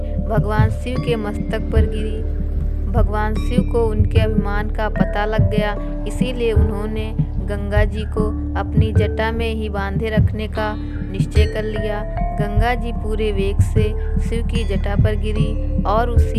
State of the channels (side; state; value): both; identical; correlation 1.00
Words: भगवान शिव के मस्तक पर गिरी। भगवान शिव को उनके अभिमान का पता लग गया, इसीलिए उन्होंने गंगा जी को अपनी जटा में ही बांधे रखने का निश्चय कर लिया। गंगा जी पूरे वेग से शिव की जटा पर गिरी और